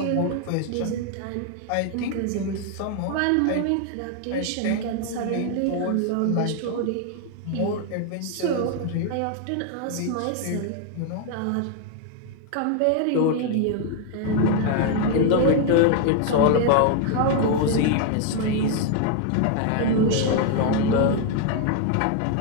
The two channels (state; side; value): different; both; correlation 0.00